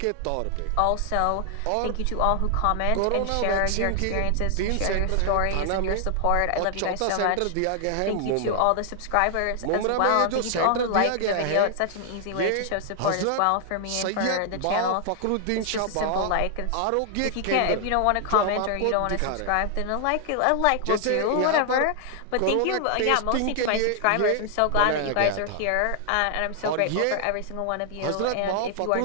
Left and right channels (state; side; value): different; both; correlation 0.00